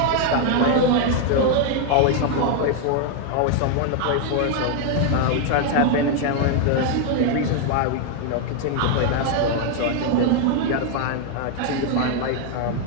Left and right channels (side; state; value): both; different; correlation 0.00